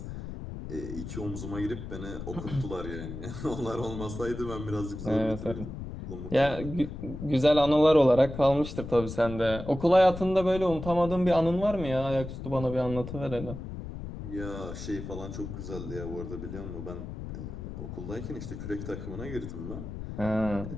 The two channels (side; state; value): left; noise; rumble, 9 dB below the sound